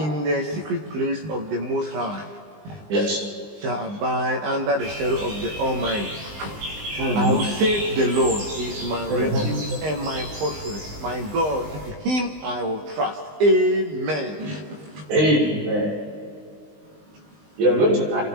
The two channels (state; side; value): late; left; 19 ms